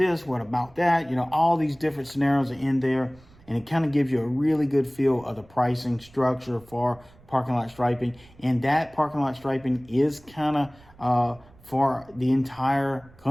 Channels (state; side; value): noise; right; rumble, 26 dB below the sound